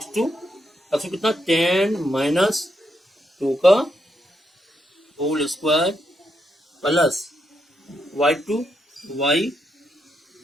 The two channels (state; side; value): normal; both; correlation 0.80